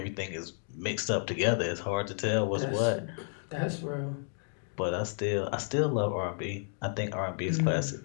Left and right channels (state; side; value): silent; right; 57 dB below the other